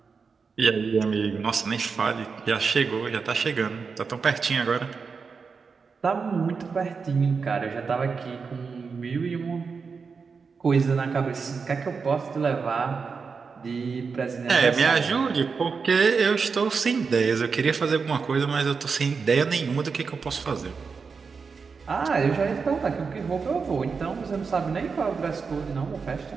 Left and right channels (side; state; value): left; quieter; 5.2 dB